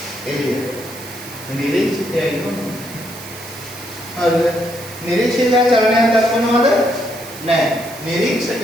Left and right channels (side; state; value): right; noise; hiss, 15 dB below the sound